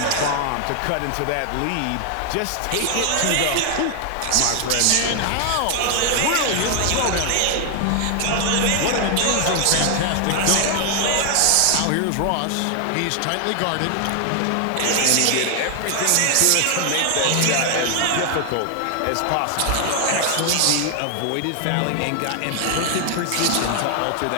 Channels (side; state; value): both; different; correlation 0.00